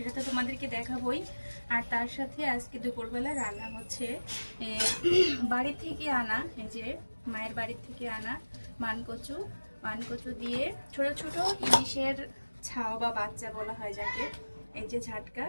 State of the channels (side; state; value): both; inverted; correlation -1.00